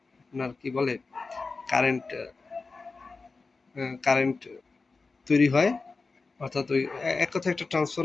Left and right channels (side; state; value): right; quieter; 4.1 dB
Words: আপনার কি বলে কারেন্ট, কারেন্ট তৈরি হয়। অর্থাৎ ওই এক কথায় একটা